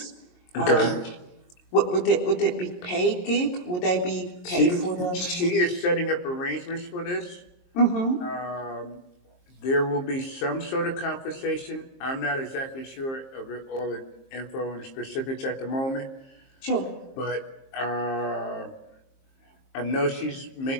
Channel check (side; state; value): right; late; 23 ms